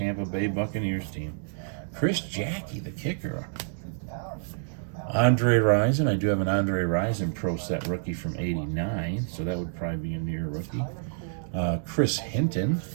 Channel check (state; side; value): silent; left; digital silence